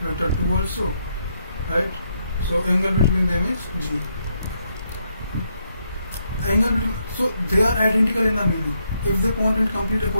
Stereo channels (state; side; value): inverted; both; correlation -0.77